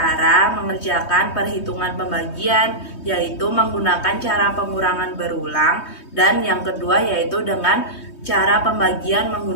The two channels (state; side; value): late; right; 3.2 ms